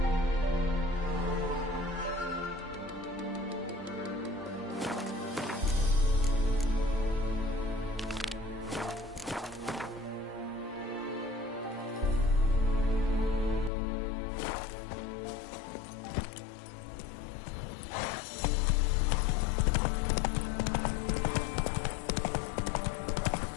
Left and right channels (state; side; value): drops out; right; at 13.7 s